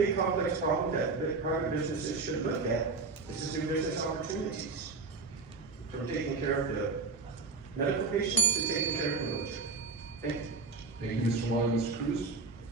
complex problem that private businesses should look at. This is new business opportunities. From taking care of the medical patients to taking care of the military. Thank you. Thank you, Mr. Moylan. Mr. Cruz?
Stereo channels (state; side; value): quieter; left; 4.1 dB